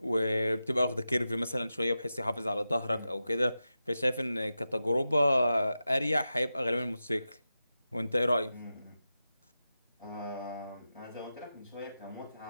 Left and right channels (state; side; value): inverted; both; correlation -0.92